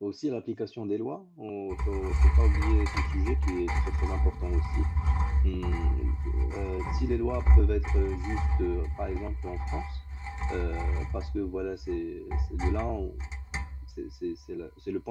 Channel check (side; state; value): both; identical; correlation 1.00